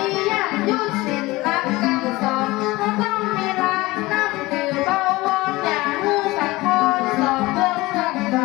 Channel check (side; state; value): right; quieter; 20.4 dB